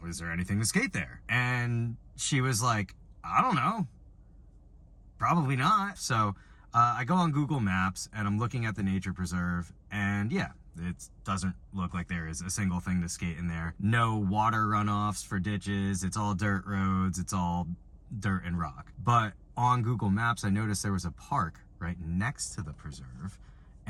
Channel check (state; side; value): identical; both; correlation 1.00